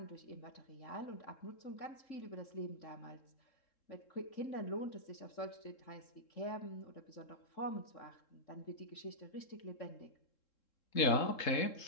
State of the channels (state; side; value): late; right; 3.7 ms